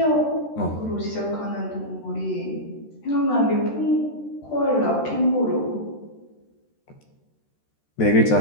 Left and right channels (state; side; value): late; right; 13 ms